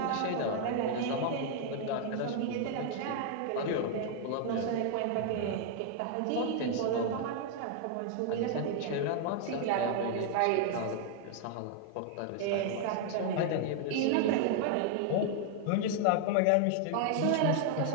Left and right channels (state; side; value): different; both; correlation 0.00